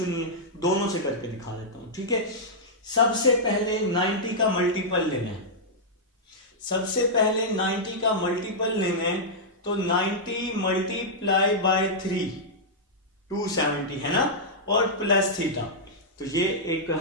नहीं है, दोनों से करके दिखा देता हूं। ठीक है, सबसे पहले 90 का मल्टीपल लेना है, सबसे पहले 90 का मल्टीपल लेना है, तो 90 मल्टीप्लाई बाय 3 270 है ना, और प्लस थीटा। तो ये एक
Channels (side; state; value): both; normal; correlation -0.09